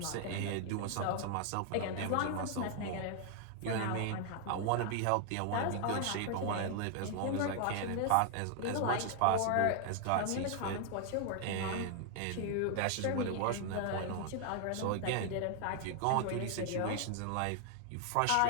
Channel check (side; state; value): both; different; correlation 0.00